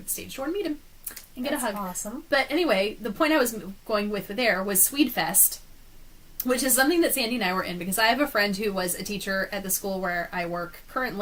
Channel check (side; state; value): both; identical; correlation 1.00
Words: the stage door and meet him and get a hug. Awesome. But anyway, the point I was going with there was Swedefest, which is something that Sandy and I were in, because I have a friend who was a teacher at the school where I work